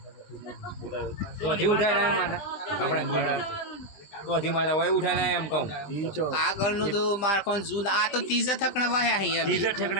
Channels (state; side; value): late; right; 20 ms